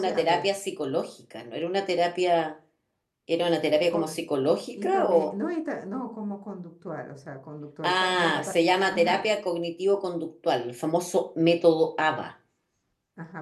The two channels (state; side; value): identical; both; correlation 1.00